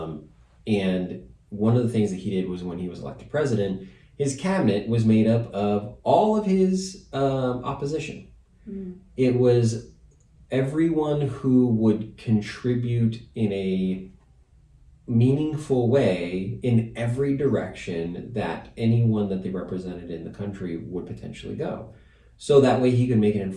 one of the things that he did was when he was elected president, his cabinet was made up of all of his opposition. Mm. It was everyone who would contribute in a meaningful way in every direction that anyone that they represented in the country would potentially go. So that way he could make an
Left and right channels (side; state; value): both; identical; correlation 1.00